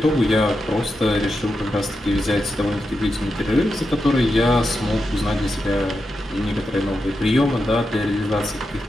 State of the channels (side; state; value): both; normal; correlation 0.88